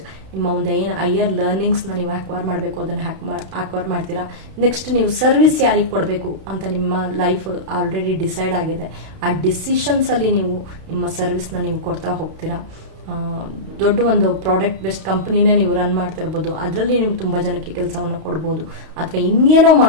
ನಿಮ್ಮ ಒಂದು ಏನು ಹೈಯರ್ ಲರ್ನಿಂಗ್ಸ್ ನ ನೀವು ಅಕ್ವೈರ್ ಮಾಡಬೇಕು ಅದನ್ನ ಅಕ್ವೈರ್ ಮಾಡ್ತೀರಾ. ನೆಕ್ಸ್ಟ್ ನೀವು ಸರ್ವಿಸ್ ಯಾರಿಗೆ ಕೊಡಬೇಕು ಅಂತ ನಿಮ್ಮ ಲೈಫ್ ಆಲ್ರೆಡಿ ಡಿಸೈಡ್ ಆಗಿದೆ. ಆ ಡಿಸಿಷನ್ಸ್ ಅಲ್ಲಿ ನೀವು ನಿಮ್ಮ ಸರ್ವಿಸ್ ನ ನೀವು ಕೊಡ್ತಾ ಹೋಗ್ತೀರಾ. ದೊಡ್ಡ ಒಂದು ಪ್ರಾಡಕ್ಟ್ ಬೇಸ್ಡ್ ಕಂಪನಿನೇ ನೀವು ರನ್ ಮಾಡ್ತಾ ಇರ್ಬೋದು. ಅದರಲ್ಲಿ ನೀವು ತುಂಬಾ ಜನಕ್ಕೆ ಕೆಲಸವನ್ನು ಕೊಡ್ಬೋದು ಅಥವಾ ಇನ್ನೇನೋ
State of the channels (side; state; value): left; late; 32 ms